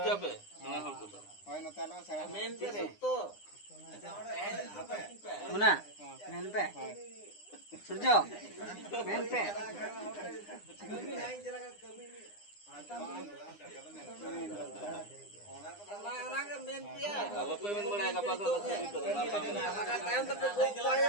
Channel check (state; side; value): late; right; 9.8 ms